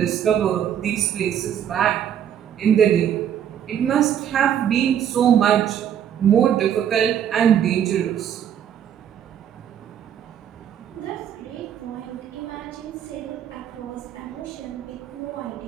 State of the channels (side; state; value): left; quieter; 9.4 dB